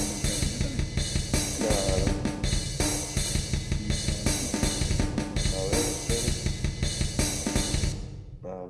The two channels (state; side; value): identical; both; correlation 1.00